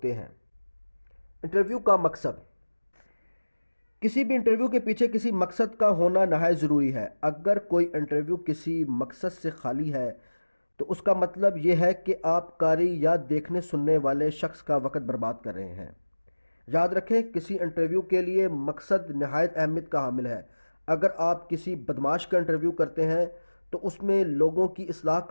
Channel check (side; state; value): both; inverted; correlation -1.00